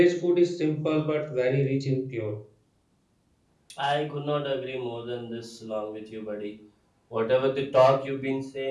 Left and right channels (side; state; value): both; identical; correlation 1.00